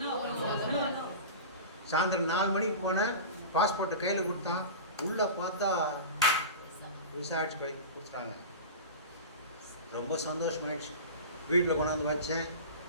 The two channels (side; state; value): both; inverted; correlation -0.31